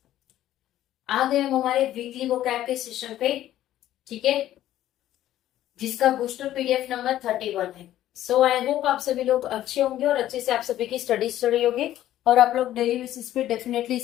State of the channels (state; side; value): quieter; right; 13.0 dB